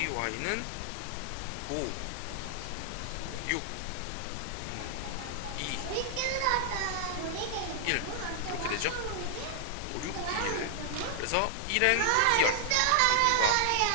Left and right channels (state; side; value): different; both; correlation 0.00